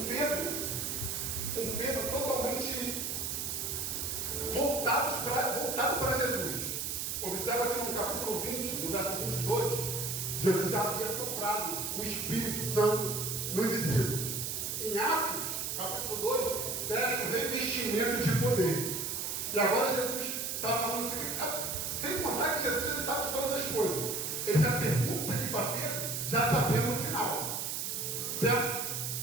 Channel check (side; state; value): right; noise; hiss, 2 dB below the sound